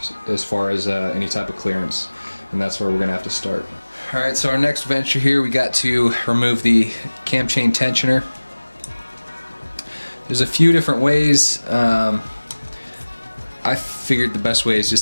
as far as any type of clearance, and that's where we're gonna have to start. Alright, so our next venture here, we got to remove the cam chain tensioner. There's a few different ways. I figured the best way is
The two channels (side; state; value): both; inverted; correlation -1.00